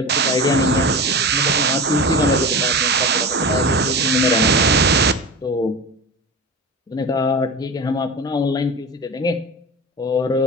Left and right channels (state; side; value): normal; both; correlation 0.29